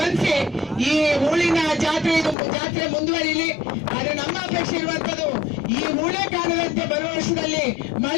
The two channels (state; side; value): drops out; right; at 2.4 s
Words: ಈ ಹೂಳಿನ ಜಾತ್ರೆ ಮುಂದುವರಿಲಿ. ಆದ್ರೆ ನಮ್ಮ ಅಪೇಕ್ಷೆ ಇರುವಂತದ್ದು ಈ ಹೂಳೆ ಕಾಲದಂತೆ ಬರುವ ವರ್ಷದಲ್ಲಿ